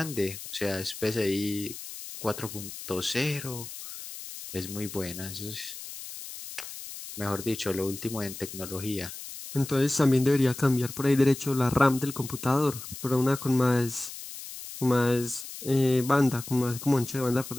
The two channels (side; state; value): left; noise; hiss, 11 dB below the sound